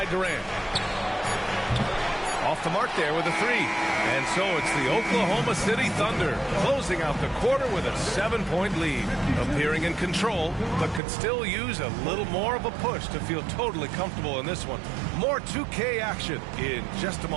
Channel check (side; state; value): left; drops out; at 11.0 s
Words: Durant. Off the mark there with a 3. And so it's the Oklahoma City Thunder closing out the quarter with a 7-point lead. Appearing in control, but could still use a little more of a push to feel totally comfortable in this one. More 2K action in just a